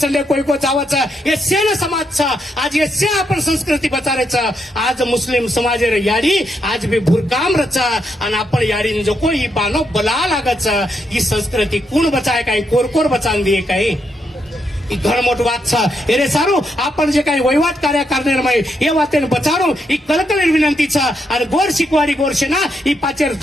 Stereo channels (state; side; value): normal; both; correlation 0.80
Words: कोई को जावच हे सेन समाजचा आज हे से आपण संस्कृती बचारायचं आज मुस्लिम समाज याडी आज भी भुरकाम रचा आणि आपण याडीन जको ही बानो बला लागच ही संस्कृती कोण बचाय काय कोरकोर बचान दिए काय ही घरमोट वात छ एरे सारू आपण जे काही वहिवाट कार्य करणार माय हे वातेन बचारो ही कलकल विनंती छ आणि गोर शिकवाडी गोरशेना ही